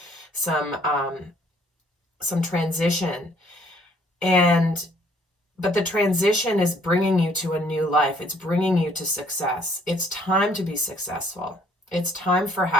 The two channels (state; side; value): normal; both; correlation 0.62